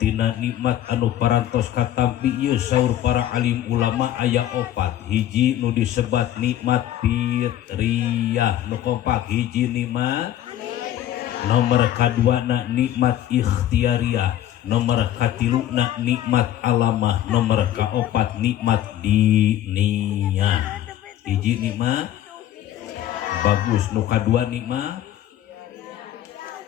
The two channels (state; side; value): quieter; right; 12.1 dB